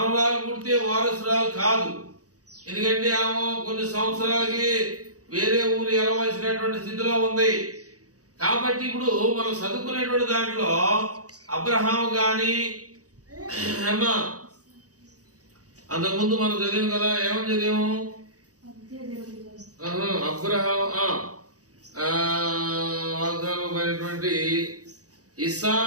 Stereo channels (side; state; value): left; late; 0.67 ms